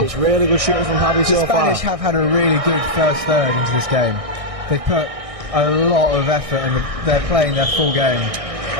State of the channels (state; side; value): late; left; 1.6 ms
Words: It's really good shooting from Javi The so far. Spanish have had a really good first third into this game. They've put a lot of effort and they're playing their full game.